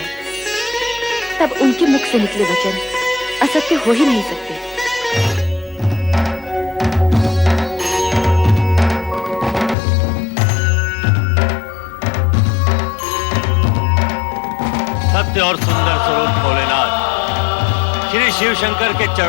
तब उनके मुख से निकले वचन असत्य हो ही नहीं सकते। सत्य और सुंदर स्वरूप भोलेनाथ, श्री शिव शंकर के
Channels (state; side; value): drops out; right; at 9.8 s